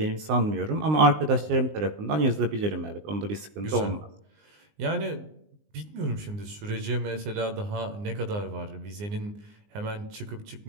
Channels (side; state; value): left; late; 19 ms